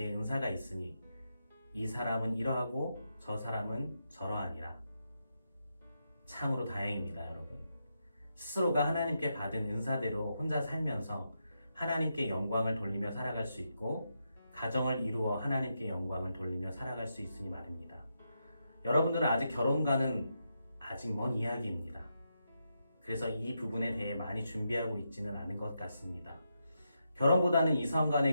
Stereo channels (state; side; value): inverted; both; correlation -0.84